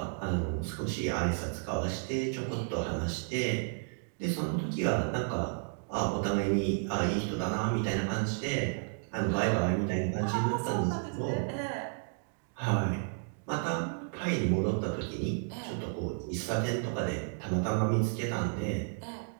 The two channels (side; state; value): left; silent; 55 dB below the other